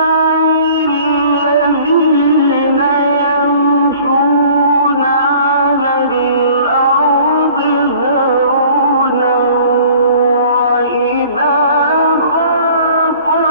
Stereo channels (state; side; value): inverted; both; correlation -0.51